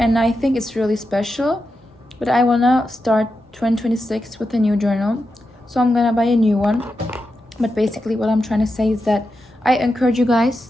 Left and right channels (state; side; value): normal; both; correlation 0.88